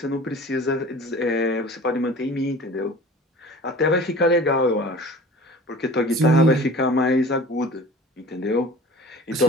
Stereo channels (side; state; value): both; normal; correlation 0.42